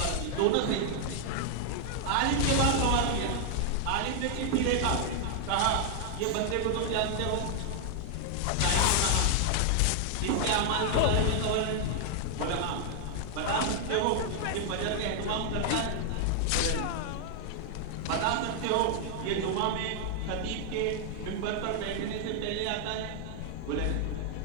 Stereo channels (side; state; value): both; different; correlation 0.00